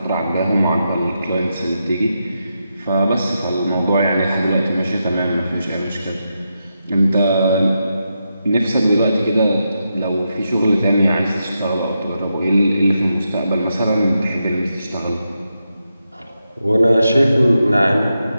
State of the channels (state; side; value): inverted; both; correlation -0.86